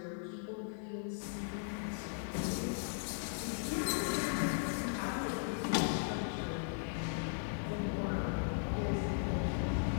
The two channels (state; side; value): silent; right; 53 dB below the other